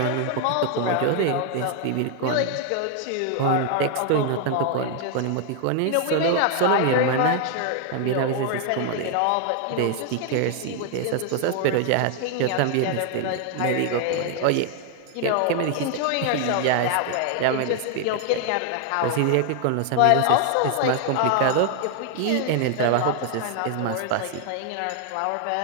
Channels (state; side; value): different; both; correlation 0.00